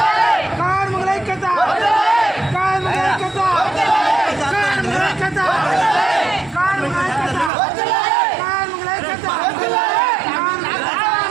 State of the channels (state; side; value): drops out; left; at 7.5 s